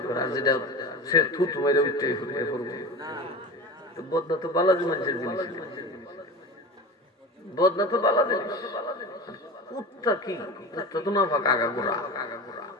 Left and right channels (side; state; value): both; normal; correlation 0.30